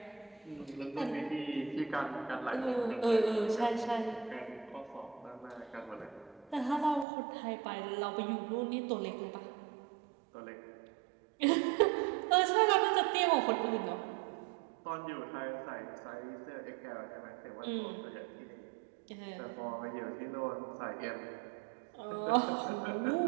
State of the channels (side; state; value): left; drops out; at 7.1 s